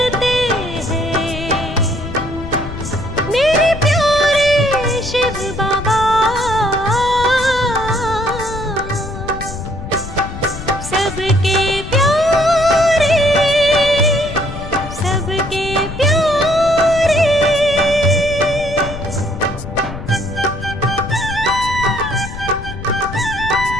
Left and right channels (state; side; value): noise; left; rumble, 10 dB below the sound